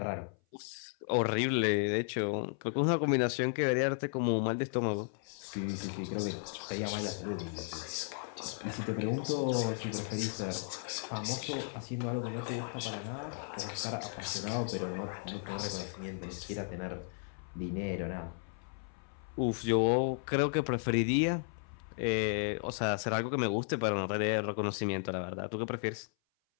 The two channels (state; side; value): silent; right; 55 dB below the other